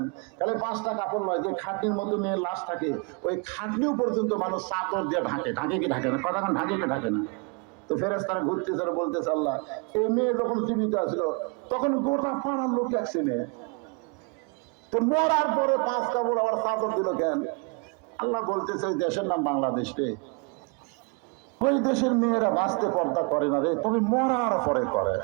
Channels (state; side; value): quieter; left; 33.0 dB